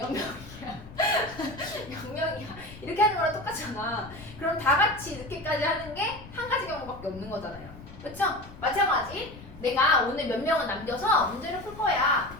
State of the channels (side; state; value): left; noise; rumble, 17 dB below the sound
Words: 0명이야. 이렇게 하는 거랑 똑같잖아. 그럼 다 같이 늦게까지 하는 게 한 가지 경우밖에 없는 거잖아요. 그렇죠? 마찬가지. 내가 오늘 몇 명은 남겨서 문제를 풀 거야.